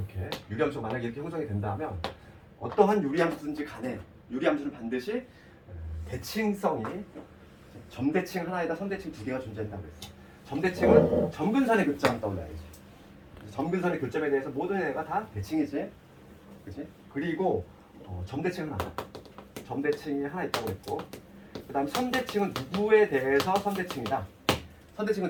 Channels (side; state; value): both; identical; correlation 1.00